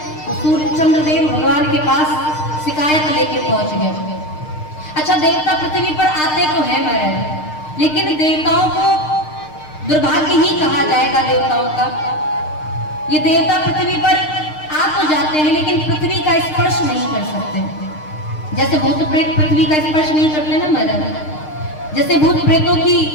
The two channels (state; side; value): late; right; 6.6 ms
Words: सूर्य चंद्रदेव भगवान के पास शिकायत लेके पहुंच गए। अच्छा, देवता पृथ्वी पर आते तो है महाराज, लेकिन देवताओं को दुर्भाग्य ही कहा जाएगा देवताओं का। ये देवता पृथ्वी पर आ तो जाते हैं लेकिन पृथ्वी का स्पर्श नहीं कर सकते। जैसे भूत प्रेत पृथ्वी का स्पर्श नहीं करते ना महाराज, जैसे भूत प्रेतों की